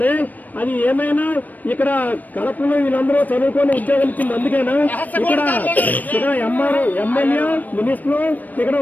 అది ఏమైనా ఇక్కడ కలెక్టర్లు వీళ్ళందరూ చదువుకొని ఉద్యోగాలు ఇచ్చింది అందుకేనా? ఇక్కడ ఎంఆర్ఓ ఎమ్మెల్యే మినిస్టర్లు ఇక్కడ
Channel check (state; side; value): late; right; 0.083 ms